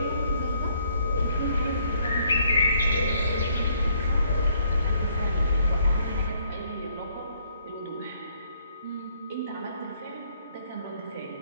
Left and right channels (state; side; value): inverted; both; correlation -0.67